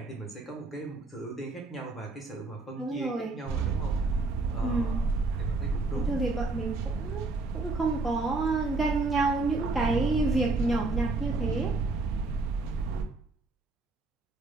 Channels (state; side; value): quieter; left; 3.4 dB